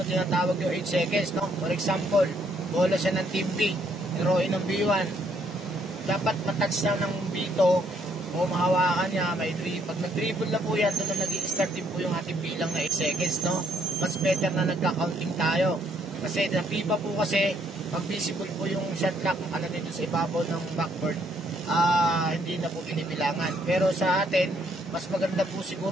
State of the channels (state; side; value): normal; both; correlation 0.70